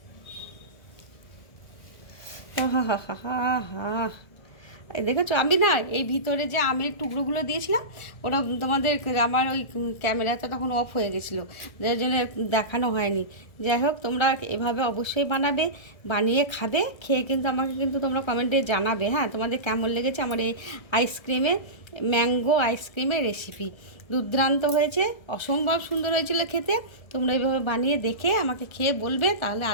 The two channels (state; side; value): late; right; 1.7 ms